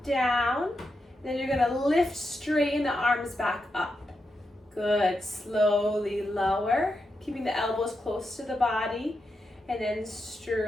down. Then you're going to lift, straighten the arms back up. Good. Slowly lower, keeping the elbows close to the body. And then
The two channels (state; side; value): normal; both; correlation 0.86